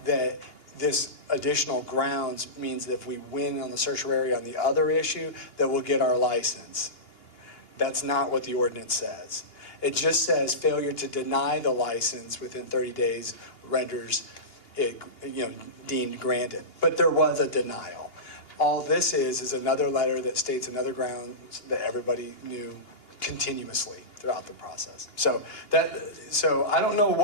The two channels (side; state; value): right; late; 2.8 ms